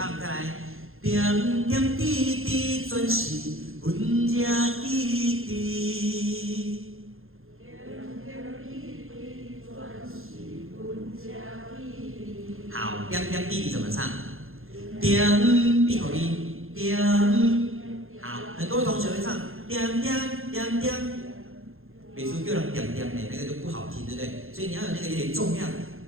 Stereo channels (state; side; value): late; left; 0.61 ms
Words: 再来，点点滴滴全是阮这意滴。好，点点滴滴怎么唱？点闭口音，点。好，很多同学会唱点点点点，每次叫人点点的那个就不好听，对不对？所以你要有那个有点重量，